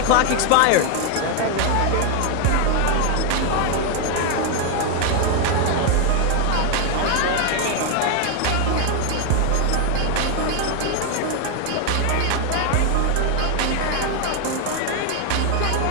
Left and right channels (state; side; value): different; both; correlation 0.01